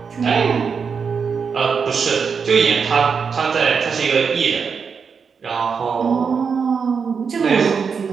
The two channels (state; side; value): quieter; left; 5.9 dB